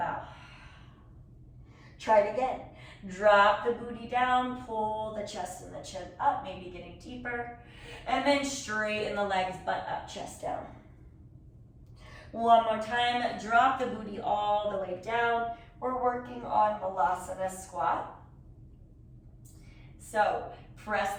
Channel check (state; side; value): identical; both; correlation 1.00